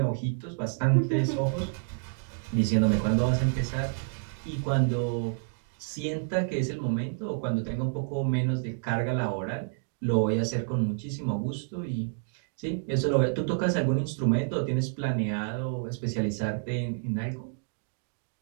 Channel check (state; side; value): silent; left; digital silence